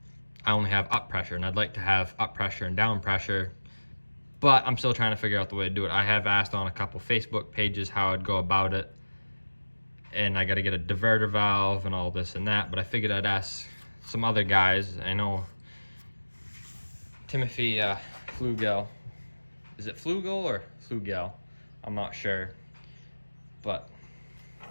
only have up pressure, and I'd like to have up pressure and down pressure, but I'm still trying to figure out the way to do it. I have asked on a couple Facebook pages how I'd go about it, and I got to get a diverter valve and all this and that, but I figured I'd ask some other guys. I know Timothy Flugel. Is it Flugel or Flugel? I'm not sure, but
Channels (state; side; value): inverted; both; correlation -1.00